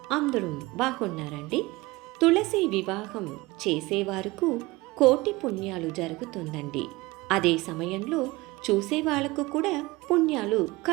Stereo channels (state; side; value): quieter; left; 21.5 dB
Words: అందరూ బాగున్నారండి? తులసి వివాహం చేసేవారుకు కోటి పుణ్యాలు జరుగుతుందండి. అదే సమయంలో చూసేవాళ్లకు కూడా పుణ్యాలు